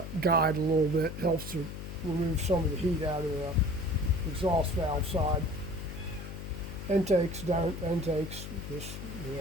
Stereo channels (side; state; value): left; noise; hum, 8 dB below the sound